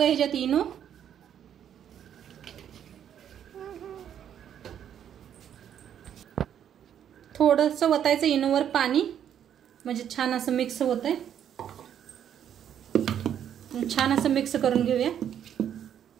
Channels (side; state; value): left; quieter; 9.5 dB